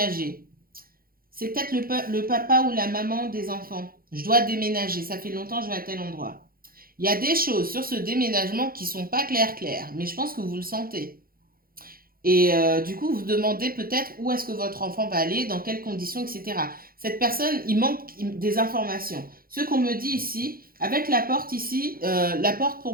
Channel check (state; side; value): late; left; 0.42 ms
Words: C'est peut-être le papa ou la maman des enfants. Je dois déménager, ça fait longtemps que je vais à tel endroit. Il y a des choses sur ce déménagement qui sont pas claires, mais je pense que vous le sentez. Et du coup, vous demandez peut-être où est-ce que votre enfant va aller, dans quelles conditions, etc. Cette personne, il manque des informations. Ce qu'on me dit ici, avec la porte ici, la porte